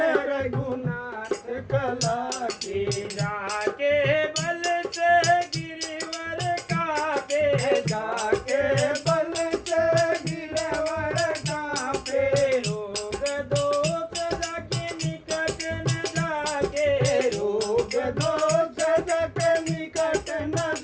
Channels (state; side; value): identical; both; correlation 1.00